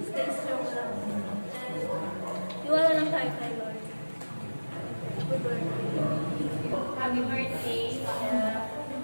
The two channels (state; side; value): inverted; both; correlation -1.00